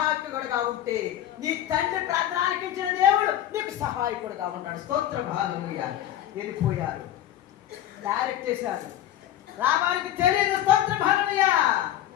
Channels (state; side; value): quieter; right; 11.9 dB